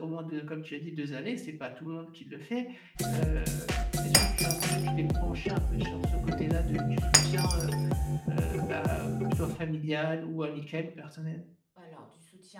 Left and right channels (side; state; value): both; identical; correlation 1.00